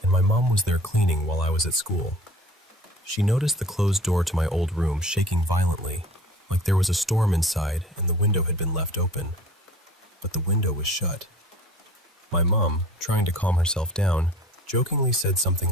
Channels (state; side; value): normal; both; correlation 0.45